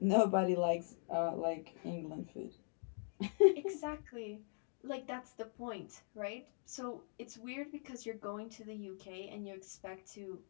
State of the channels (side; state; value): right; silent; 50 dB below the other